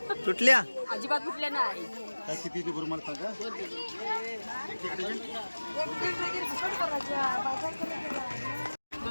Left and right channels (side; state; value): both; inverted; correlation -1.00